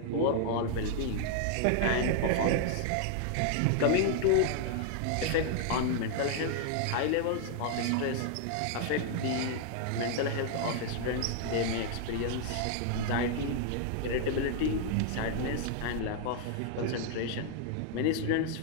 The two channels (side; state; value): both; different; correlation 0.00